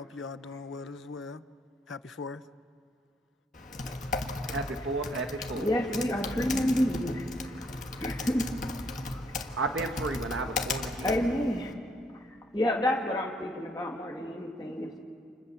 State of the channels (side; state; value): both; normal; correlation 0.69